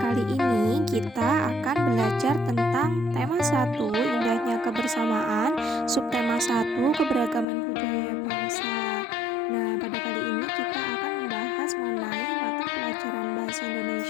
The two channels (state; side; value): drops out; right; at 7.5 s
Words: ini kita akan belajar tentang tema 1, indahnya kebersamaan, subtema 1, keberagaman budaya bangsa. Nah, pada kali ini kita akan membahas mengenai mata pelajaran bahasa